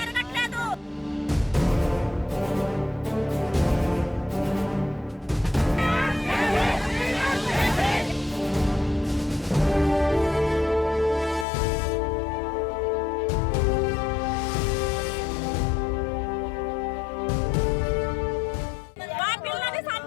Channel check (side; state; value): right; drops out; at 11.5 s